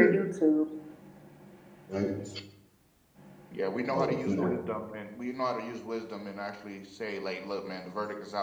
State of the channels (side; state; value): both; identical; correlation 1.00